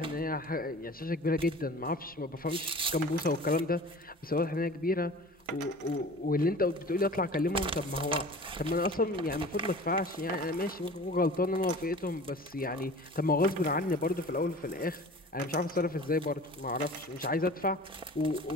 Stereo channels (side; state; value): both; normal; correlation 0.41